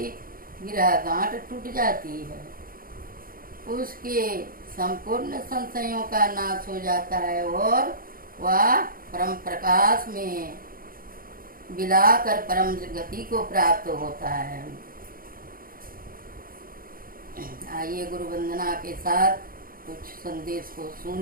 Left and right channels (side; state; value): left; late; 0.42 ms